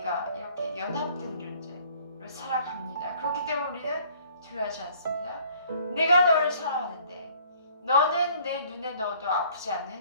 이렇게 연합된 존재로 살아갑니다. 그렇기 때문에 우리는 두려워하지 않습니다. 내가 너를 사랑하는데 너는 내 눈에 넣어도 아프지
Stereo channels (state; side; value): inverted; both; correlation -0.56